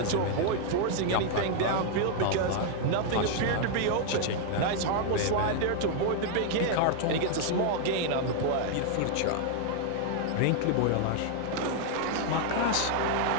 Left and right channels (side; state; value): both; different; correlation 0.00